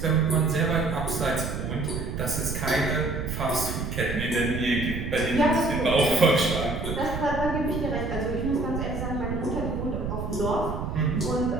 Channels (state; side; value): noise; right; rumble, 4 dB below the sound